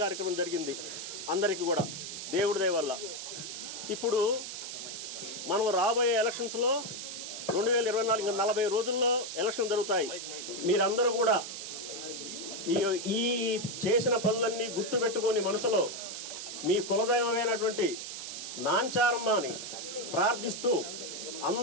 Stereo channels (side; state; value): right; noise; hiss, 7 dB below the sound